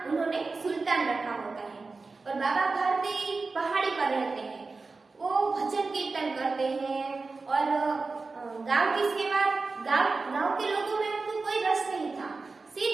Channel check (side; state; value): left; quieter; 4.0 dB